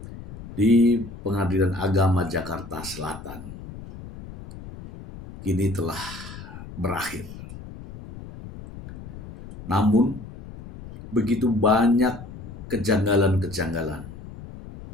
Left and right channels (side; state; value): left; noise; rumble, 14 dB below the sound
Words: di Pengadilan Agama Jakarta Selatan kini telah berakhir. Namun, begitu banyak kejanggalan-kejanggalan